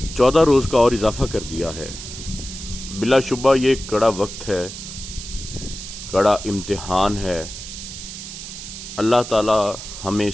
14 रोज़ का और इजाफ़ा कर दिया है। बिलाशुबा ये कड़ा वक्त है, कड़ा इम्तिहान है। अल्लाह ताला हमें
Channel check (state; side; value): noise; right; hiss, 11 dB below the sound